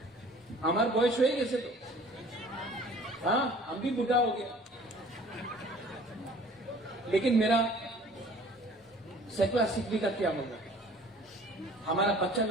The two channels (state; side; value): normal; both; correlation 0.50